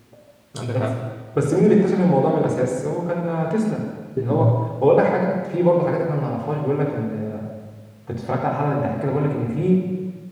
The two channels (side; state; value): both; identical; correlation 1.00